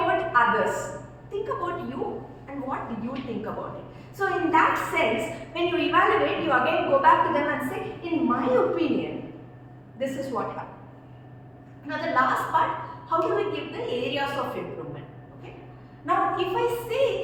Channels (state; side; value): identical; both; correlation 1.00